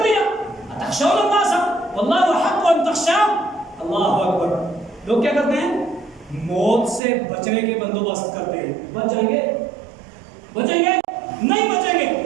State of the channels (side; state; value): left; drops out; at 7.0 s